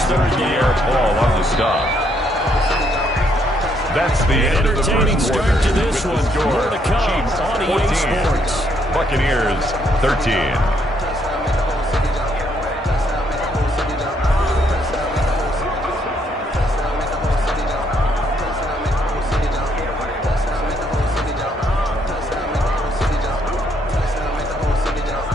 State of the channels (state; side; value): normal; both; correlation 0.71